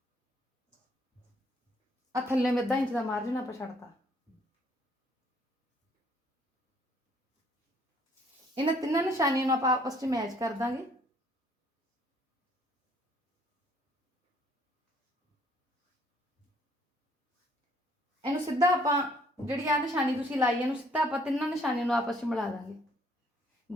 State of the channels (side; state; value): both; normal; correlation 0.63